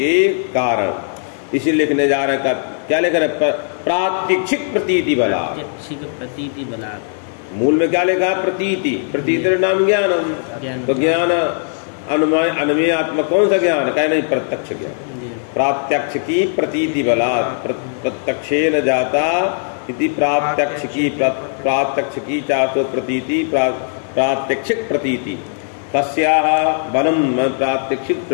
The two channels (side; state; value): right; silent; 66 dB below the other